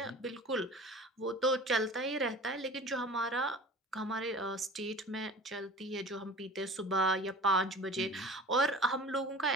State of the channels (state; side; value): normal; both; correlation 0.41